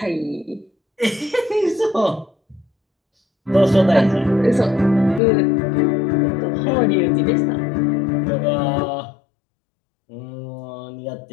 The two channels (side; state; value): right; drops out; at 5.2 s